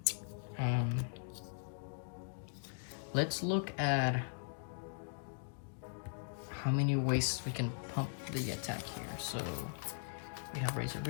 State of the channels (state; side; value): silent; right; digital silence